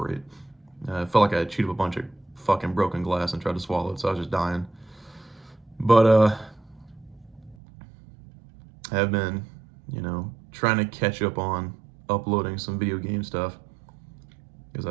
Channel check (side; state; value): left; drops out; at 7.6 s